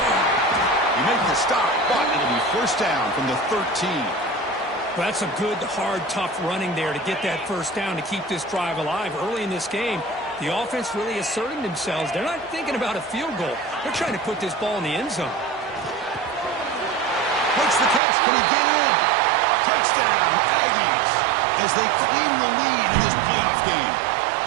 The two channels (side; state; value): left; drops out; at 18.0 s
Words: He makes the stop, but it'll be first down from the 13. Well, that's a good, hard, tough running there to get that first down to keep this drive alive. Early in this game, the offense really asserting themselves. They're not thinking about a field goal. They're trying to put this ball in the end zone. makes the catch. Can he get in? Touchdown, Aggies, as they claim the lead in this playoff game.